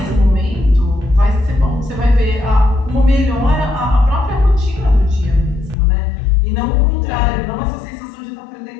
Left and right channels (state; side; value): drops out; right; at 5.8 s